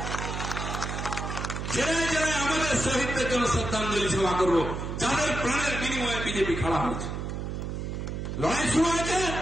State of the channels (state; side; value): noise; right; hum, 4 dB below the sound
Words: জেলায় জেলায় আমাদের শহীদদের জন্য শ্রদ্ধাঞ্জলি সভা করবো, যাদের প্রাণের বিনিময়ে বিজেপি খাড়া হয়েছে, লড়াই শুরু হয়েছে।